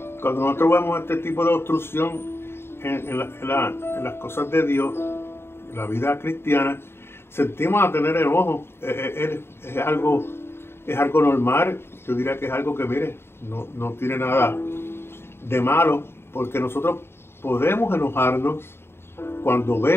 cuando nosotros vemos este tipo de obstrucción en las cosas de Dios, en la vida cristiana, sentimos a tener enojo. Es algo normal. Yo diría que es algo que, mire, no tiene nada de malo, porque nosotros podemos enojarnos cuando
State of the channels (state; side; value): late; right; 0.11 ms